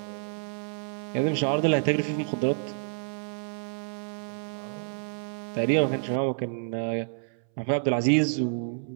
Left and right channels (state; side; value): silent; left; 59 dB below the other